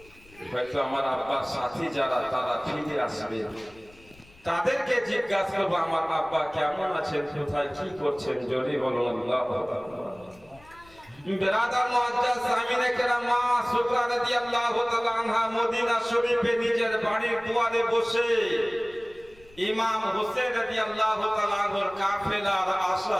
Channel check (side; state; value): left; noise; rumble, 26 dB below the sound